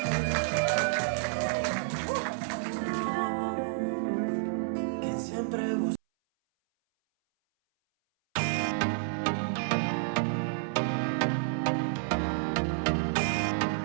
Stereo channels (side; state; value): left; silent; 58 dB below the other